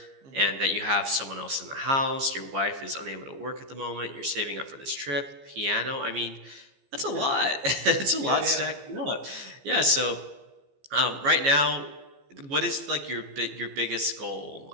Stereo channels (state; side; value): late; left; 15 ms